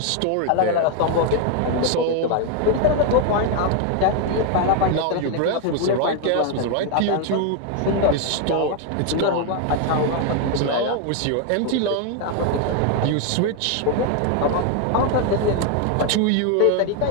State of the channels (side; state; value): both; different; correlation 0.01